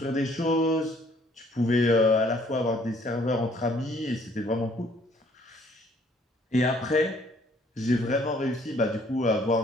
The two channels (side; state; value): both; normal; correlation 0.61